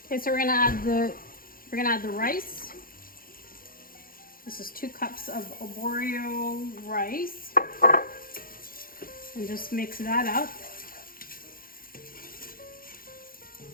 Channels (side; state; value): right; late; 0.42 ms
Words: Okay, so we're gonna add the rice. This is 2 cups of arborio rice. And just mix that up.